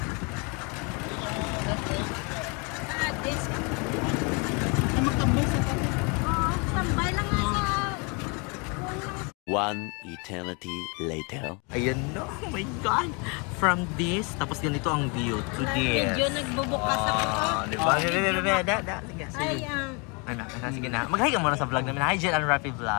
One eternity later. Ayan na, oh my God! From this, tapos ganito ang view to this. Medyo nagbubukas ako. Diba? Sige. Ay, Sige na. Mag-hi ka muna sa vlog namin. Hi, Jel and Rafi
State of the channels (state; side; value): quieter; right; 32.1 dB